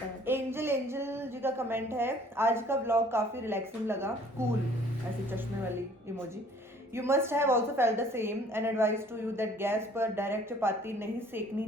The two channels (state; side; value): normal; both; correlation 0.55